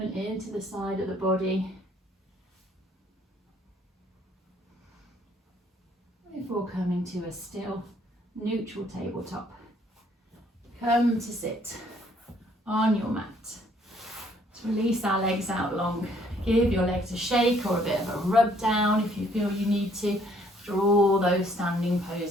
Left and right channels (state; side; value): normal; both; correlation 0.64